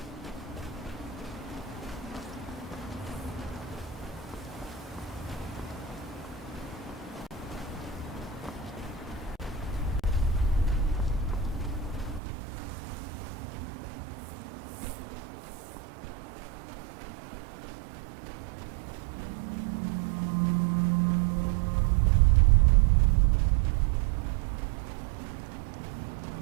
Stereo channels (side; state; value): left; drops out; at 12.2 s